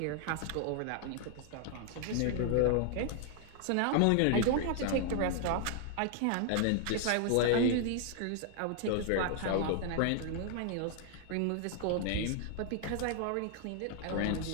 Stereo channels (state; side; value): different; both; correlation 0.00